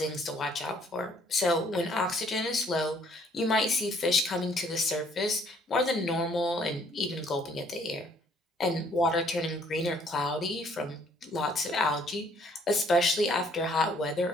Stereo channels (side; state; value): both; normal; correlation 0.63